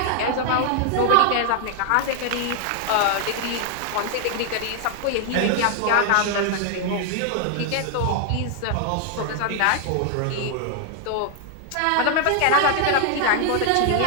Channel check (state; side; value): different; both; correlation 0.00